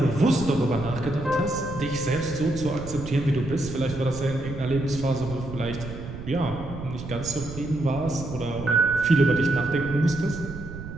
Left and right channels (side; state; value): right; noise; rumble, 10 dB below the sound